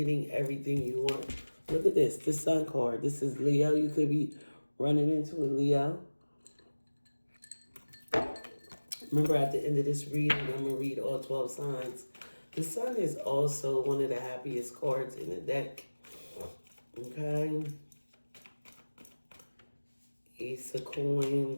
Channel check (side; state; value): both; inverted; correlation -1.00